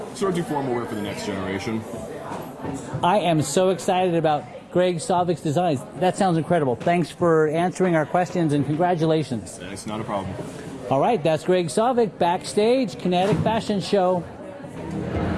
sort of do formal wear for the next generation. I am so excited about Greg Sovic's designs. That sounds incredible. Thanks for answering our questions and congratulations. It's not a problem. All right, that's Greg Sovic, backstage, Kinetic Fashion Show.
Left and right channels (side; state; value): both; identical; correlation 1.00